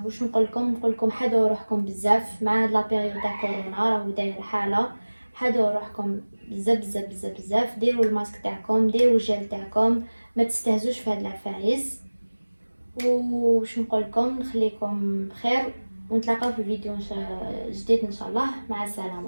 واش نقول لكم حدوا روحكم بزاف مع هاد لا بيريود تاع كورونا راهو داير حاله. حدوا روحكم بزاف بزاف بزاف بزاف، ديروا الماسك تاعكم، ديروا الجل تاعكم، ما تستهزوش في هاد العفايس. وش نقول لكم نخليكم بخير ونتلاقاو في فيديو جديد ان شاء الله. مع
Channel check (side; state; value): both; inverted; correlation -1.00